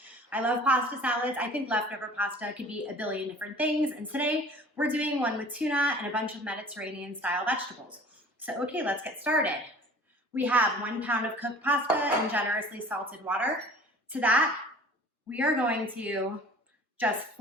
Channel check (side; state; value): both; normal; correlation 0.46